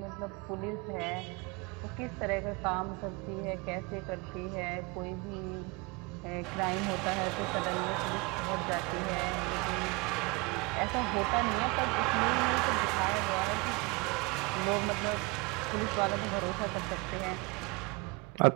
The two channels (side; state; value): left; quieter; 27.2 dB